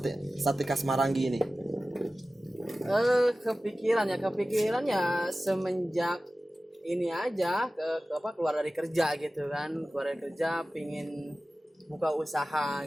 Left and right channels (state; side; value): normal; both; correlation 0.96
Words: khas Marangi ini? Kepikiran ya semenjak ini aja keluar dari kerja gitu kan, keluar dari kerja pingin buka usaha